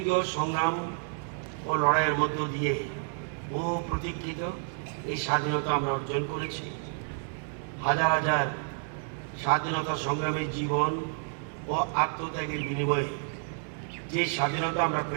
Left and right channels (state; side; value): silent; left; 58 dB below the other